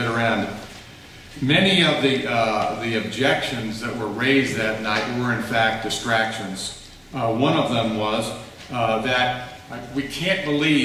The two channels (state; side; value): identical; both; correlation 1.00